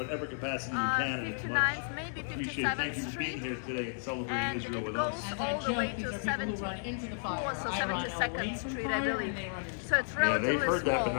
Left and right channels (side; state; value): right; silent; digital silence